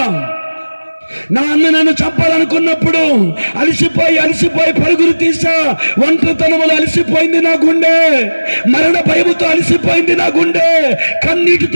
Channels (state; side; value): inverted; both; correlation -1.00